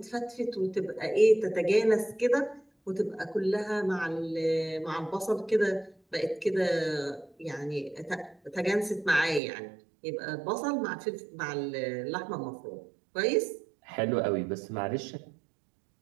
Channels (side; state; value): left; drops out; at 9.4 s